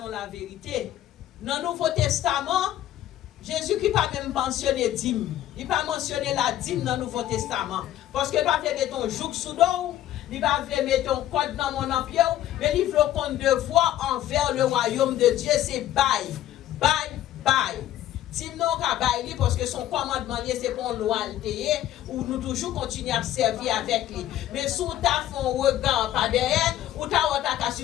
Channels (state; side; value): quieter; right; 12.7 dB